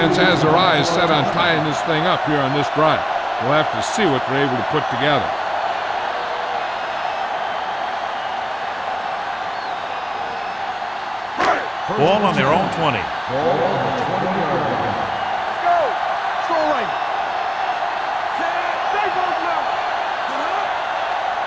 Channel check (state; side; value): identical; both; correlation 1.00